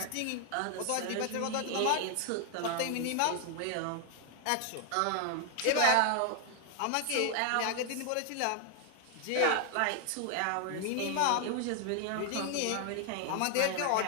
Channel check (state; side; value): different; both; correlation 0.00